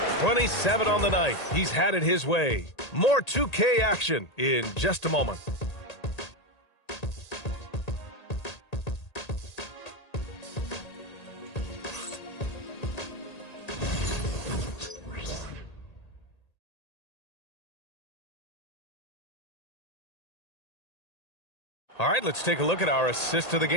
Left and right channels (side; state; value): right; late; 1.8 ms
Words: 27 on the night. He's had it his way. More 2K action in just a moment. All right, let's take a look at our assist of the